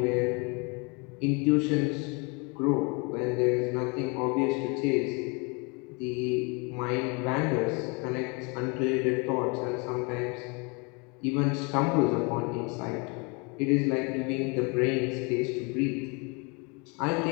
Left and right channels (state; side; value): quieter; right; 31.2 dB